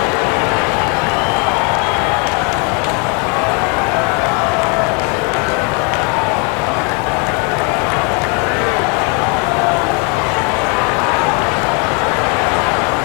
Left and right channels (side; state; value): right; quieter; 35.0 dB